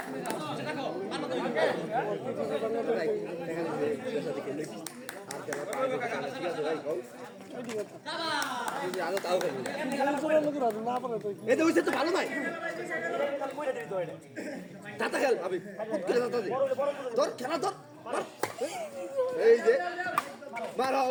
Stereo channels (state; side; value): identical; both; correlation 1.00